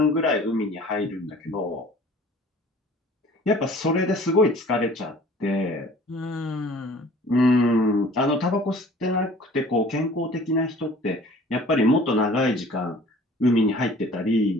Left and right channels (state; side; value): normal; both; correlation 0.49